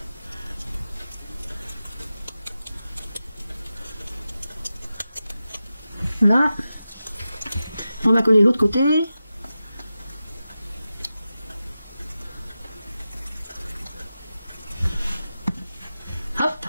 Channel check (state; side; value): inverted; both; correlation -0.93